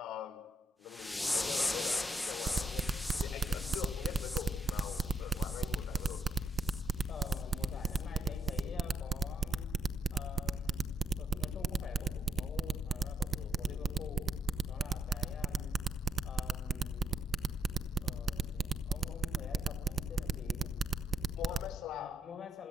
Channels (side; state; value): both; normal; correlation 0.76